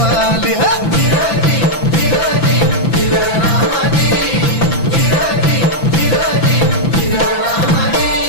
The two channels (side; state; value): right; late; 5.9 ms